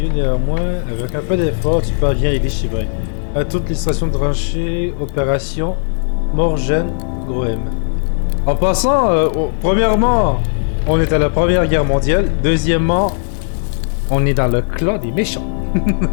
néanmoins. Avec un peu d'effort, tu parviens à les déchiffrer. À toute l'illustration de tranchée, opération, Morgen, gros M. En passant, premièrement, on est à la Première Guerre mondiale. Deuxièmement, on est dans le clan des méchants.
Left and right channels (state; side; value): silent; right; digital silence